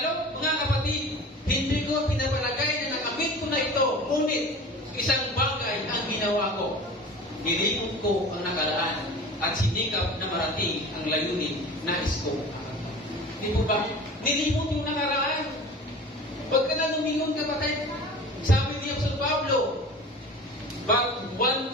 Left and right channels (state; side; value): normal; both; correlation 0.38